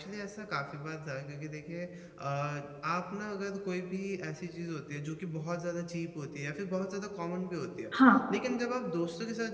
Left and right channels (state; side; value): identical; both; correlation 1.00